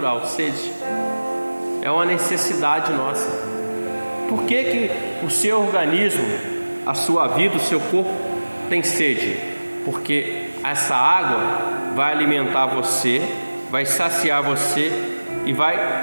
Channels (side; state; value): both; inverted; correlation -1.00